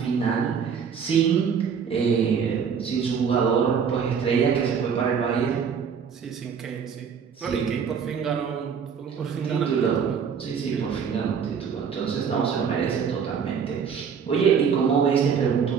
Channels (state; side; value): quieter; left; 6.8 dB